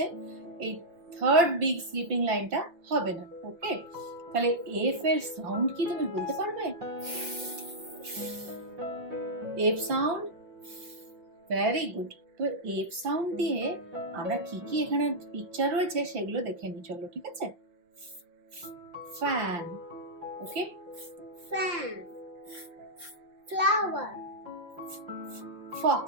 এই থার্ড বিগ স্লিপিং লাইনটা হবে না। ওকে, তাহলে F এর সাউন্ড কি তুমি বলতে পারবে? F sound, very good. তো F সাউন্ড দিয়ে আমরা কি কি এখানে পিকচার রয়েছে সেগুলো দেখে নিই, চলো। ঠিক আছে, fan, okay, fan, flower, fox,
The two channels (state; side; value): late; left; 5.8 ms